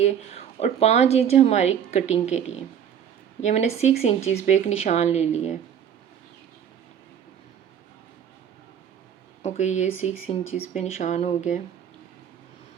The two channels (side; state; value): left; quieter; 8.7 dB